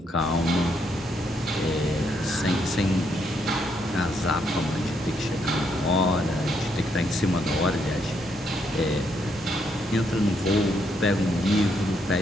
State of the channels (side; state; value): both; normal; correlation 0.75